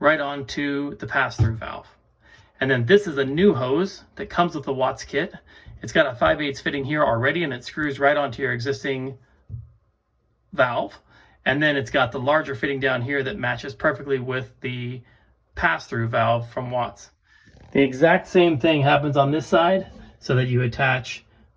right onto the pass-through valve. And then this is a new hose that comes with the Watts kit. It's got a 5/8 fitting here already and it screws right onto your existing valve, and then it's got the larger fitting down here that matches perfectly with the pass-through valve from Watts. The exact same thing happens on this side, so that you attach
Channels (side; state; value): both; identical; correlation 1.00